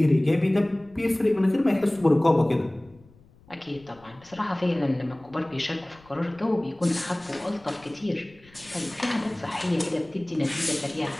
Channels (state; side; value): noise; left; rumble, 27 dB below the sound